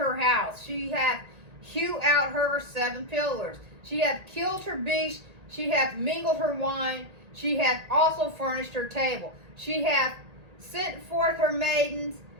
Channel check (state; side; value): late; left; 1.8 ms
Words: house. She hath hewed out her 7 pillars. She hath killed her beast. She hath mingled her wine. She hath also furnished her table. She hath sent forth her maidens.